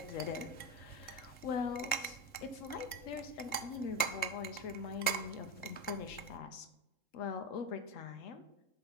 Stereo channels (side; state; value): right; late; 3.7 ms